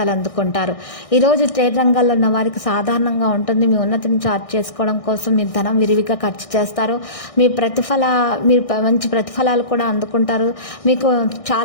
అందుకుంటారు. ఈరోజు ట్రేడ్ రంగాల్లో ఉన్న వారికి సాధారణంగా ఉంటుంది. మీ ఉన్నతిని చార్ట్ చేసుకోవడం కోసం మీరు ధనం విరివిగా ఖర్చు చేస్తారు. మీరు మంచి ప్రతిఫలాలు కూడా అందుకుంటారు. మీకు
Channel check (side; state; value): right; late; 1.6 ms